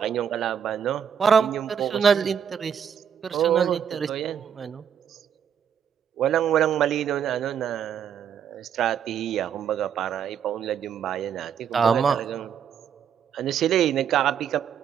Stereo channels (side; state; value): left; quieter; 8.2 dB